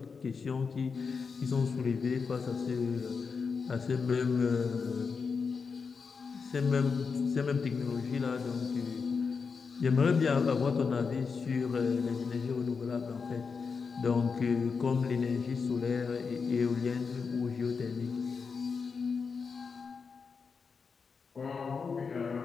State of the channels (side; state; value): right; quieter; 5.3 dB